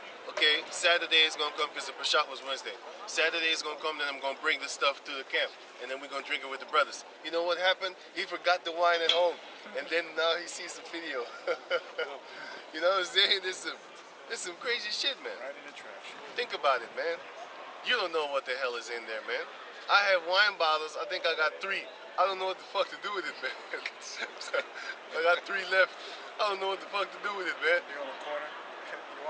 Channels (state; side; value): identical; both; correlation 1.00